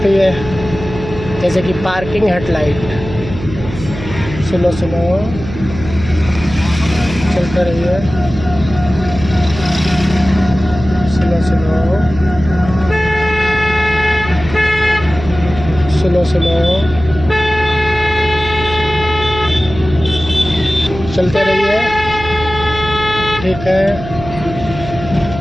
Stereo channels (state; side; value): noise; right; hum, 11 dB below the sound